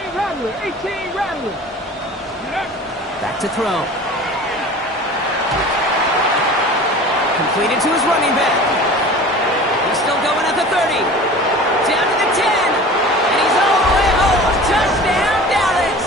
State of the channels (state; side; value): normal; both; correlation 0.40